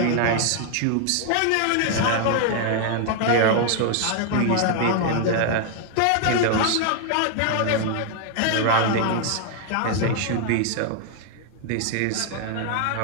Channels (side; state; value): both; different; correlation 0.00